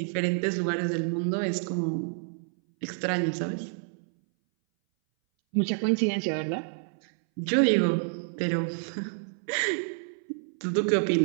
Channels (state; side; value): silent; left; 59 dB below the other